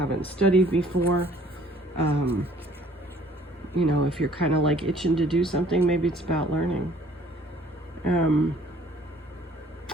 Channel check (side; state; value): both; normal; correlation 0.56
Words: studied before. You know, if you're kind of like itching to do something, maybe it's about learning.